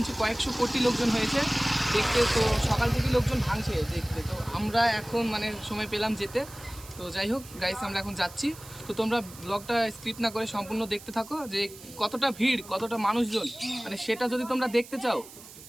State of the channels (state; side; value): noise; right; hiss, 18 dB below the sound